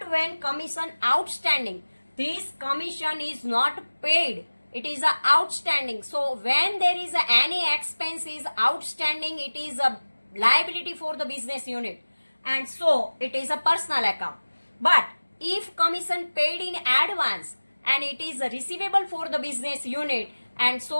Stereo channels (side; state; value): both; inverted; correlation -1.00